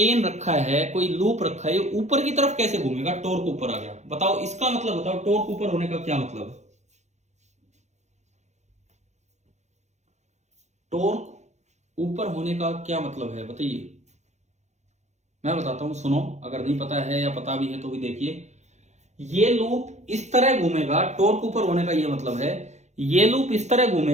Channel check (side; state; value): left; late; 0.33 ms